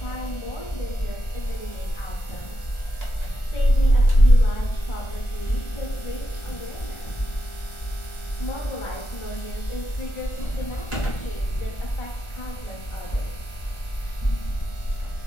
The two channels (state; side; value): late; right; 1.4 ms